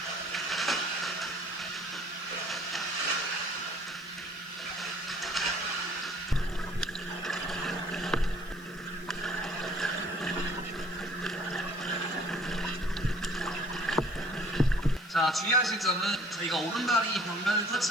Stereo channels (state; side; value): noise; left; hiss, 24 dB below the sound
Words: 자, 주의하실 점은 저희가 오른발이 벽면을